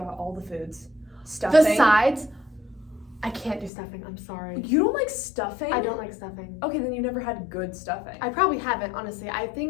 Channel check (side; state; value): right; drops out; at 3.7 s